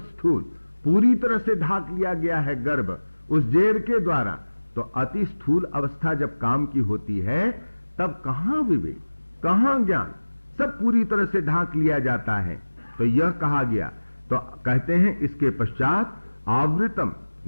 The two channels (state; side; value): inverted; both; correlation -1.00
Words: पूरी तरह से ढांक लिया गया है गर्भ उस जेर के द्वारा। तो अति स्थूल अवस्था जब काम की होती है तब कहां विवेक, कहां ज्ञान, सब पूरी तरह से ढांक लिया जाता है। तो यह कहा गया, तो कहते हैं इसके पश्चात आवृतम